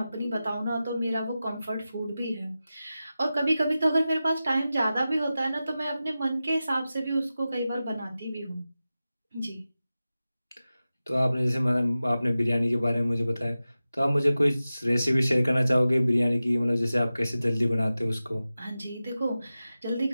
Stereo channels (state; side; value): inverted; both; correlation -0.94